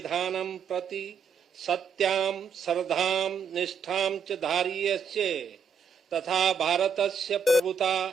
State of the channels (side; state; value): left; quieter; 6.1 dB